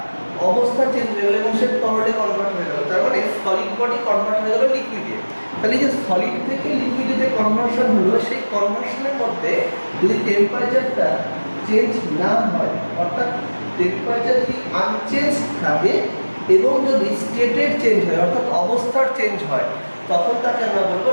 অবস্থা চেঞ্জ হয়ে গেল এবং সে তরলে কনভার্ট হয়ে গেল। তার মানে সলিড বডি কনভার্ট হয়ে গেল লিকুইডে। তাহলে যে সলিড থেকে লিকুইডে যে কনভার্সন হলো, সেই কনভার্সনের মধ্যে যদি টেম্পারেচারটা চেঞ্জ না হয়, অর্থাৎ টেম্পারেচার যদি আনচেঞ্জ থাকে এবং যদি স্টেটের চেঞ্জ হয় অর্থাৎ অবস্থার চেঞ্জ হয়, তখন তাকে আমরা বলবো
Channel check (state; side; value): inverted; both; correlation -1.00